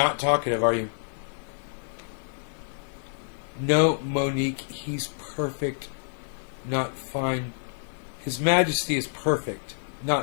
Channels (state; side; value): silent; right; digital silence